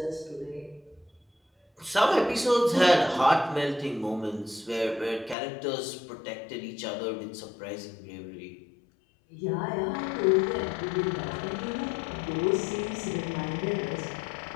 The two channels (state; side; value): drops out; right; at 5.4 s